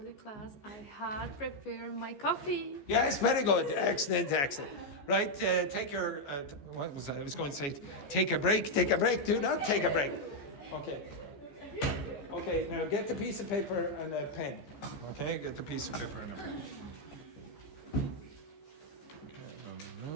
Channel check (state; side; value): late; right; 14 ms